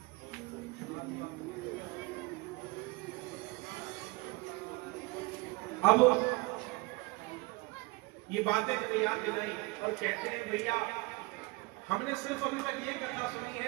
अब ये बातें तो याद दिलाई और कहते हैं भैया हमने सिर्फ अभी तक ये कथा सुनी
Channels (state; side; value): quieter; left; 23.7 dB